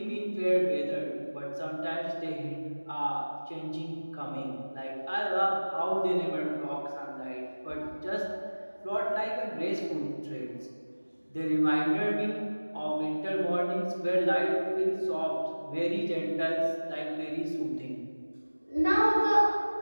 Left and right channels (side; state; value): both; inverted; correlation -1.00